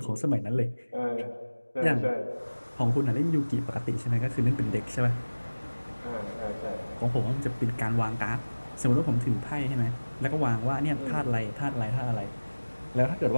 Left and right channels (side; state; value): both; inverted; correlation -1.00